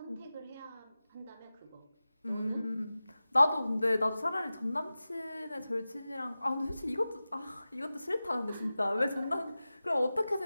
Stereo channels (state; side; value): inverted; both; correlation -0.96